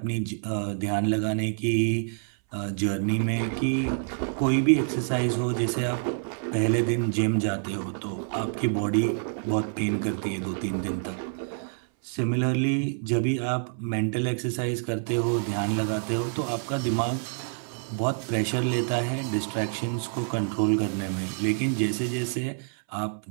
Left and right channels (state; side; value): silent; left; 60 dB below the other